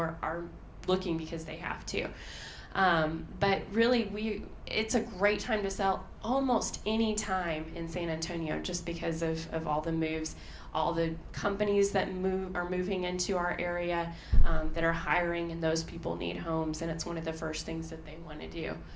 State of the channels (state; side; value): identical; both; correlation 1.00